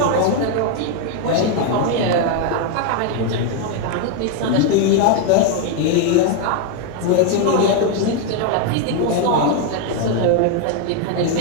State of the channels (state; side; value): different; both; correlation 0.01